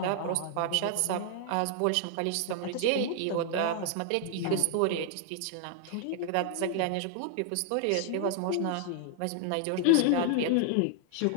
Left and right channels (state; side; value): different; both; correlation 0.00